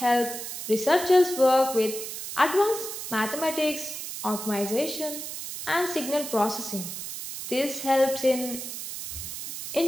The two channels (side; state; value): right; noise; hiss, 7 dB below the sound